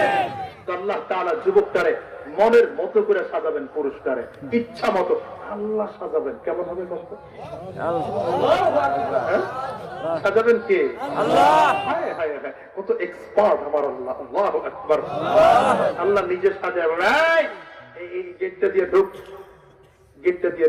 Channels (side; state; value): both; identical; correlation 1.00